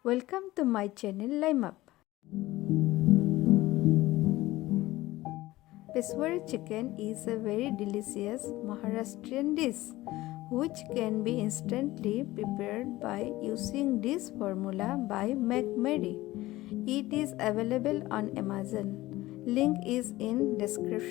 Welcome to my channel Lime Up. Peshawari chicken is a very delicious Maharashtrian dish which can be instantly prepared by using this formula by McMary. It is available on Amazon. Link is in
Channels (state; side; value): quieter; right; 17.7 dB